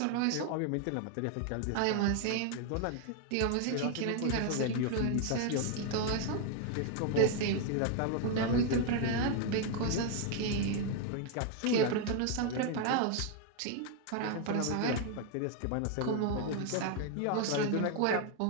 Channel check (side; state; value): both; different; correlation 0.00